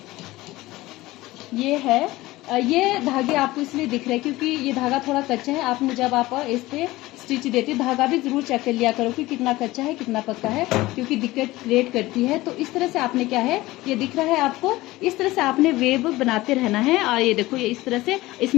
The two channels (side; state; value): right; quieter; 18.6 dB